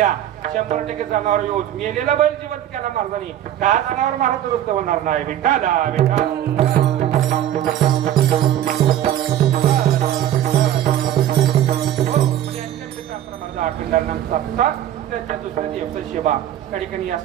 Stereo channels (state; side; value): quieter; left; 11.6 dB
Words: 100% जनावर येऊन मेलेला बैल जिवंत केला महाराजांनी. का जनावर महाराज दुरुस्त होणार नाही. विठाला त्यांच्या दुसऱ्या दिवस सेवा त्या ठिकाणी